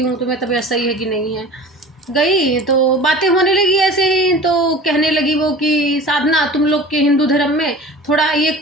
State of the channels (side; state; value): both; normal; correlation 0.38